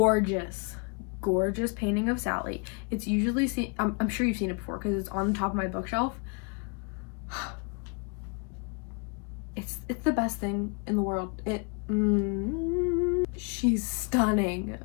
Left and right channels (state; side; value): quieter; right; 34.0 dB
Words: painting of Sally. It's usually seen, I'm sure you've seen it before because it's on the top of my bookshelf. It's the best thing in the world. She's stunning.